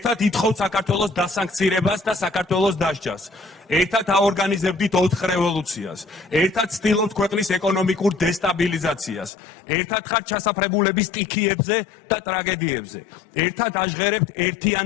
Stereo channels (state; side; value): drops out; right; at 9.3 s